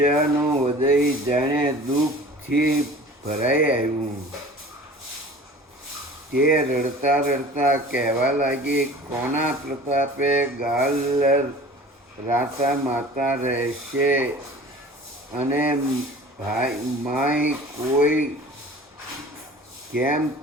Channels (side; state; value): both; normal; correlation 0.43